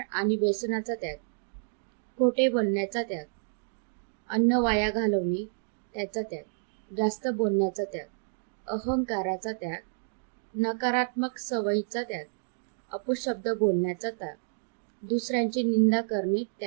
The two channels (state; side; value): silent; left; digital silence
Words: आणि व्यसनाचा त्याग, खोटे बोलण्याचा त्याग, अन्न वाया घालवणे त्याचा त्याग, जास्त बोलण्याचा त्याग, अहंकाराचा त्याग, नकारात्मक सवयीचा त्याग, अपशब्द बोलण्याचा त्याग, दुसऱ्यांची निंदा करणे